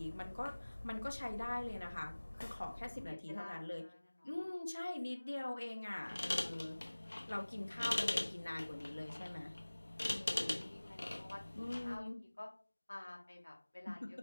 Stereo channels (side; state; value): both; inverted; correlation -1.00